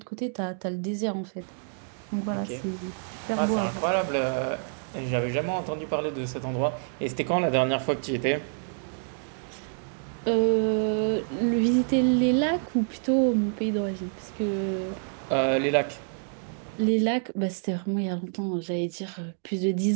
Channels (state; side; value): silent; left; digital silence